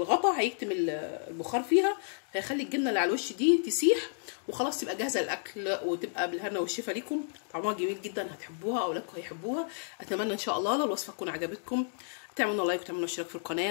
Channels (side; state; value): right; silent; digital silence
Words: هيكتم البخار فيها، هيخلي الجبنه اللي على الوش دي تسيح، وخلاص تبقى جاهزه للاكل، وتبقى بالهنا والشفا ليكم. طعمها جميل جدا، هتحبوها، اولادكم هيحبوها. اتمنى ان شاء الله لو الوصفه تكون عجبتكم تعملوا لايك وتعملوا اشتراك في القناه.